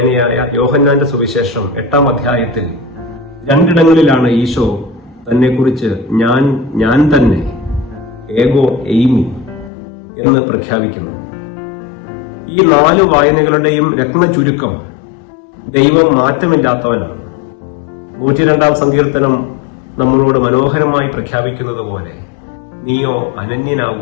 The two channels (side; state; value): right; drops out; at 9.7 s